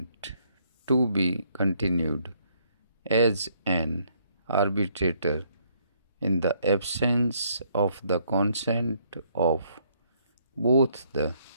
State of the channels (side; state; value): both; inverted; correlation -0.68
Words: to be continued as an arbitrator in the absence of the consent of both the